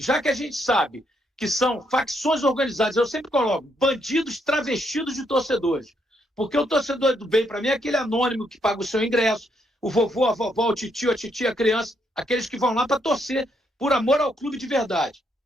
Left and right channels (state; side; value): normal; both; correlation 0.75